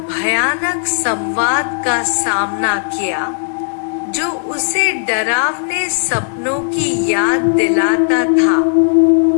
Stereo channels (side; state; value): right; silent; digital silence